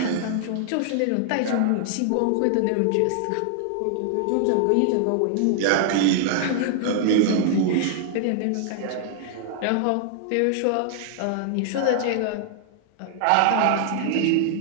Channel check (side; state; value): both; different; correlation 0.00